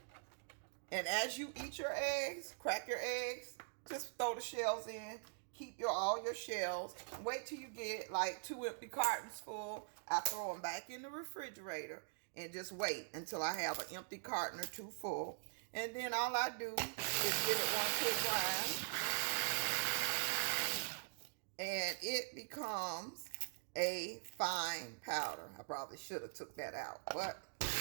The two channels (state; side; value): silent; left; digital silence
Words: And as you eat your eggs, crack your eggs, just throw the shells in. Keep all your shells. Wait till you get like 2 empty cartons full. I throw them back in the refrigerator and just wait until I have an empty carton or 2 full. And then all I do is give it one quick grind. And it becomes a fine powder. I probably should have took that out, but the